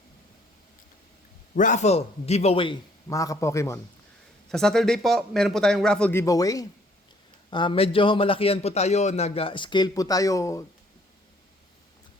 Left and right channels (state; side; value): normal; both; correlation 0.62